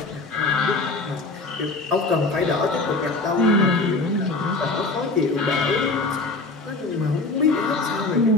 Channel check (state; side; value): quieter; right; 3.3 dB